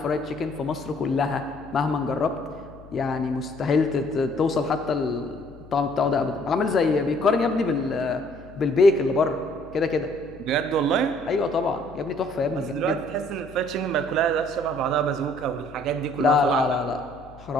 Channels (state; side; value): noise; left; hum, 20 dB below the sound